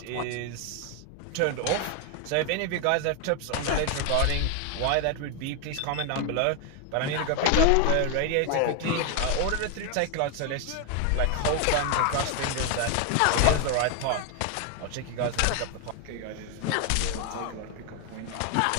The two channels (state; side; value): different; both; correlation 0.01